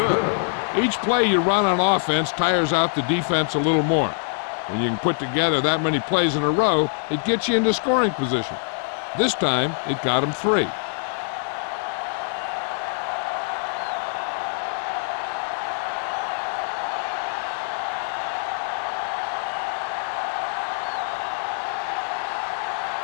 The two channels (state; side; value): silent; right; 63 dB below the other